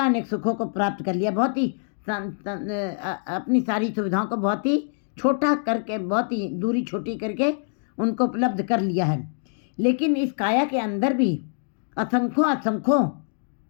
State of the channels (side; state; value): right; silent; digital silence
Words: सुखों को प्राप्त कर लिया। बहुत ही अपनी सारी सुविधाओं को बहुत ही छोटा करके, बहुत ही दूरी छोटी करके उनको उपलब्ध कर लिया है। लेकिन इस काया के अंदर भी असंख्यों